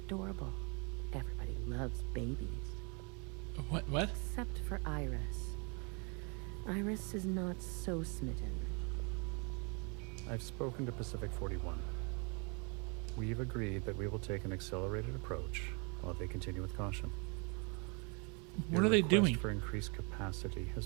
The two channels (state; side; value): quieter; left; 33.7 dB